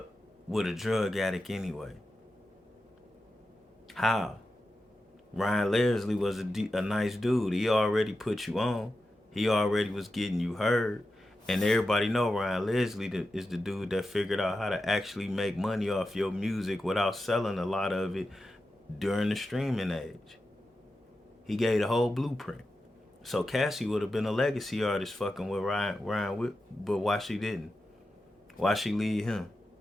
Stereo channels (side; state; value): both; normal; correlation 0.91